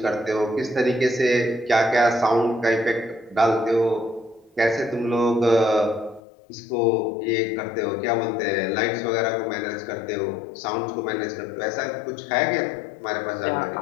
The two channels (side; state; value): right; drops out; at 6.2 s